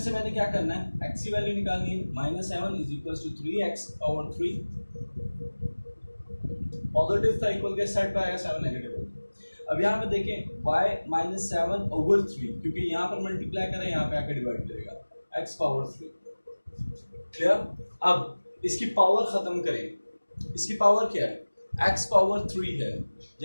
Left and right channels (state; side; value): inverted; both; correlation -1.00